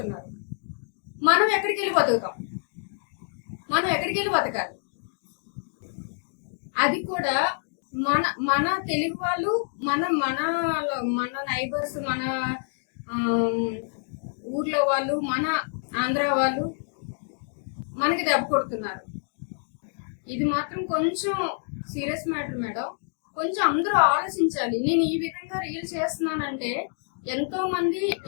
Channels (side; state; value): right; silent; digital silence